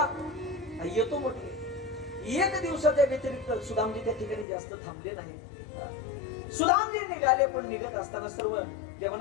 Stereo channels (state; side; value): drops out; right; at 4.5 s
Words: येतो म्हटले. एक दिवसाच्या व्यतिरिक्त सुदामजी त्या ठिकाणी जास्त थांबले नाही. सुदामजी निघाले, पण निघत असताना सर्व